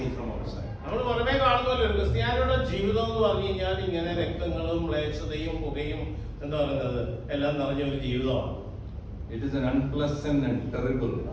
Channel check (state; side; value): identical; both; correlation 1.00